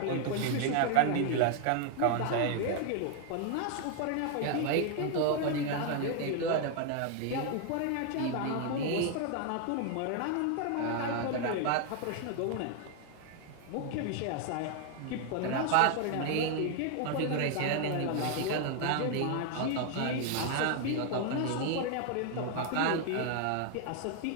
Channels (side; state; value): both; different; correlation 0.00